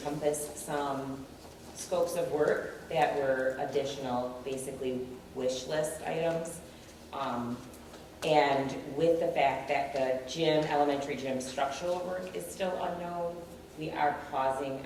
some scopes of work that were additional, basically wish list items. And with the fact that the gym, elementary gym structural work is still unknown, we are pausing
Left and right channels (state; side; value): identical; both; correlation 1.00